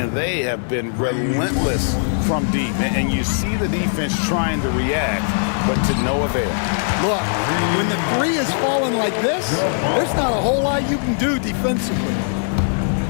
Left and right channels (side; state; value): right; silent; 59 dB below the other